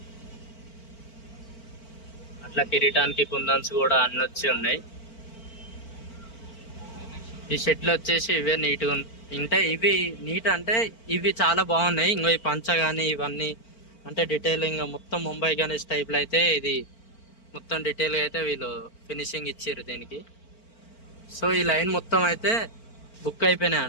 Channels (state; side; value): late; right; 4.4 ms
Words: అట్లా కిరీటానికి కుందన్స్ కూడా అన్ని వచ్చి ఉన్నాయి. ఈ షెట్లు వచ్చేసి ఇవే నీట్గా అంటే ఇవి నీట్ అంటే ఇవి చాలా బాగున్నాయి. ఇంకో ఈ పంచ కానీ ఇవన్నీ అంటే డీటెయిలింగ్ మొత్తం ముంబై గణేష్ టైప్లో అయితే ఇది మొత్తం డీటెయిల్గా అయితే వీళ్ళు ఫినిషింగ్ ఇచ్చారు దీనికి. సో ఈ లైన్ మొత్తం అయితే బుక్ అయిపోయినాయి